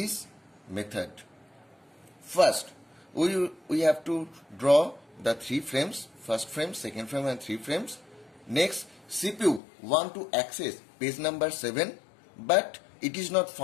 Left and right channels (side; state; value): right; drops out; at 9.6 s